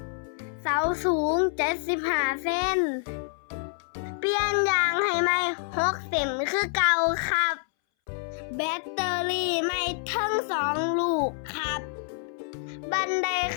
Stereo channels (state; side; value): silent; right; 60 dB below the other